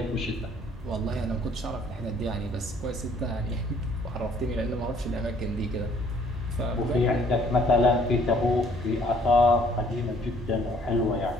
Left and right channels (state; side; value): normal; both; correlation 0.61